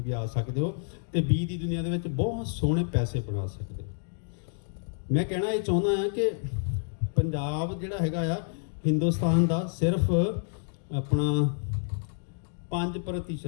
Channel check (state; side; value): silent; right; digital silence